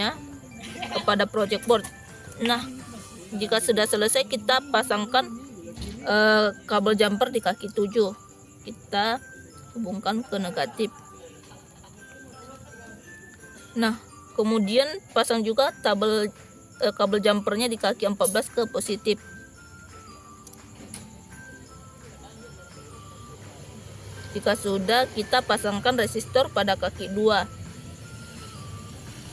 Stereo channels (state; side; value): identical; both; correlation 1.00